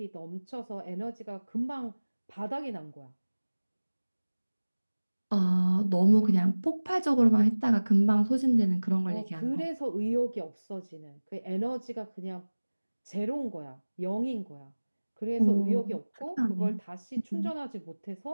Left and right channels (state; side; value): inverted; both; correlation -1.00